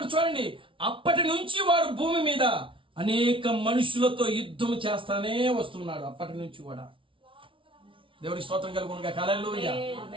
చూడండి, అప్పటి నుంచి వాడు భూమి మీద అనేక మనుషులతో యుద్ధం చేస్తానే వస్తున్నాడు. అప్పటి నుంచి కూడా దేవుని స్తోత్రం కలుగునుగా. Hallelujah.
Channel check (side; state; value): left; late; 0.25 ms